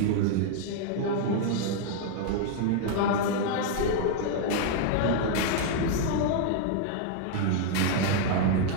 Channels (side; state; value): both; different; correlation 0.00